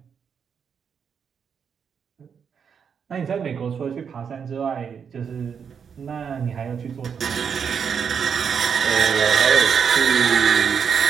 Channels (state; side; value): quieter; left; 6.9 dB